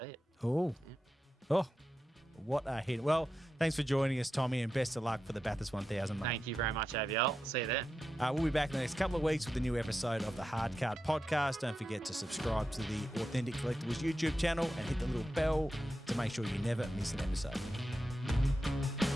it. Oh, what a hit! Well, thanks for joining us, Tommy, and best of luck for the Bathurst 1000. Mate. Thank you very much, AVL. See you then. We'll be back in the next couple of weeks with a new episode of the Hard Card Podcast. Don't forget to subscribe to the Authentic Collectables YouTube channel and hit the little bell to make sure you never miss an episode.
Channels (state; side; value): normal; both; correlation 0.89